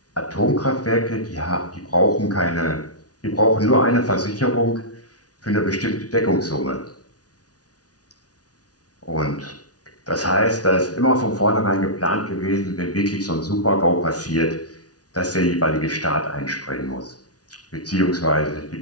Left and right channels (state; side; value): late; right; 0.68 ms